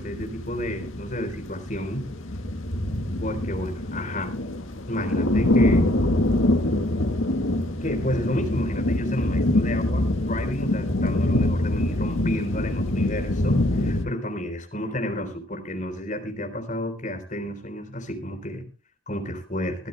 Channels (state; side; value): normal; both; correlation 0.64